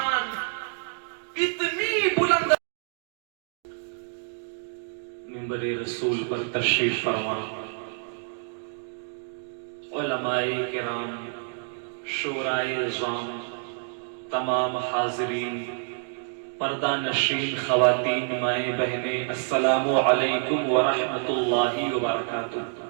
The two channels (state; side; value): silent; left; 60 dB below the other